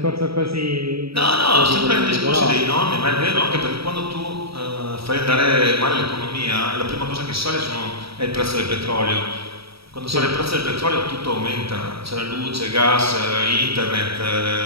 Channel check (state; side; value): late; left; 0.76 ms